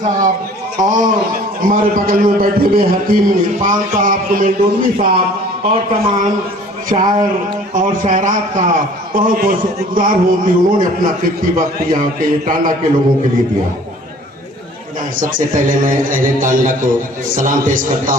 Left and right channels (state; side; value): normal; both; correlation 0.50